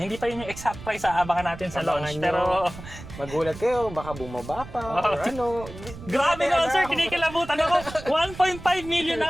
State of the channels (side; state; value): right; noise; rumble, 14 dB below the sound